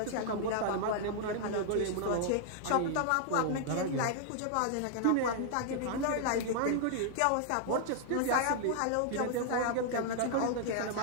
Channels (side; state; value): both; different; correlation -0.01